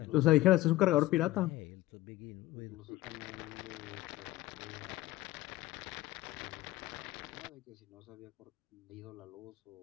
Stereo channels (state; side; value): quieter; right; 16.9 dB